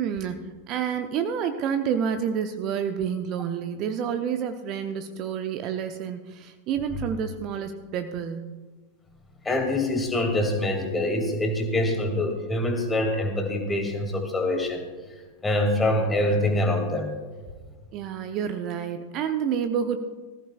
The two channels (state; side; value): normal; both; correlation 0.32